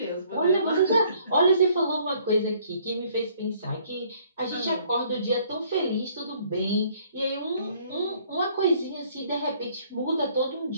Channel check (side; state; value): both; inverted; correlation -0.61